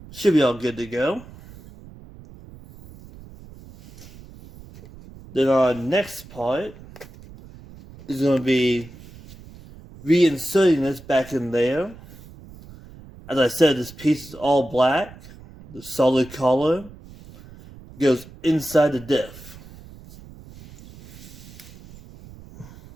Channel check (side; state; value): right; noise; rumble, 19 dB below the sound